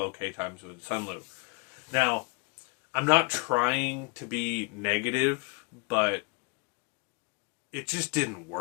times with Sunlu. Now, I'm not trying to be negative, but it just didn't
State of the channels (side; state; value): right; quieter; 31.2 dB